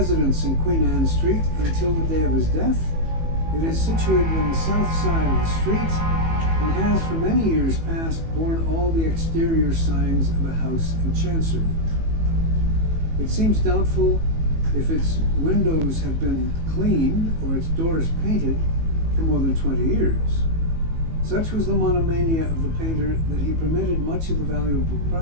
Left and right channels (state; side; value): late; left; 18 ms